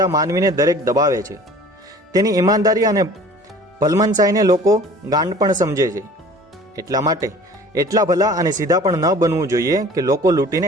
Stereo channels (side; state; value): both; normal; correlation 0.47